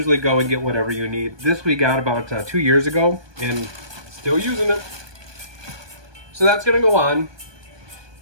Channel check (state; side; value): late; left; 1.2 ms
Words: go and get whatever you need. This we got about 2 years ago and still using it. So that's gonna go on.